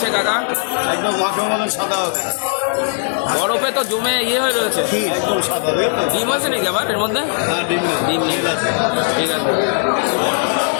কাকা, একদম মাখো মতো সাদা বরফে তো জমে ইয়ে হয়ে রয়েছে। একদম সাদা ডিম আছে নাকি আবার এর মধ্যে? ডিম নেই, ঠিক আছে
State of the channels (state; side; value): silent; right; digital silence